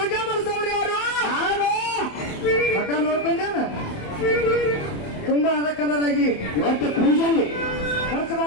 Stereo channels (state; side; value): late; right; 27 ms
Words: ಮಾಡಿಸೋರು ಯಾರು? ಮಠ ನೋಡ್ಕೊಂಡೇನ ತುಂಬಾ ಅದ ಕಲರ್ ಆಗಿ ಇವತ್ತು ಪೂಜೆಯಲ್ಲಿ ಖರ್ಚು